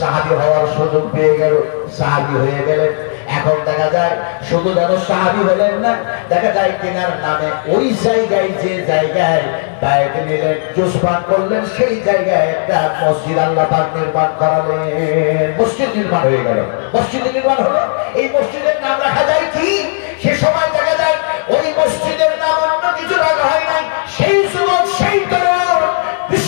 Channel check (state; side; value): silent; right; digital silence